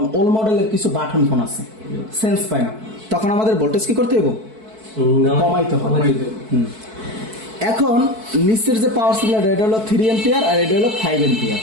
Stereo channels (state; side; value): late; left; 4.6 ms